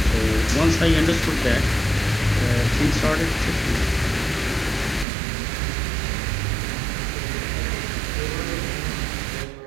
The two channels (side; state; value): left; drops out; at 5.1 s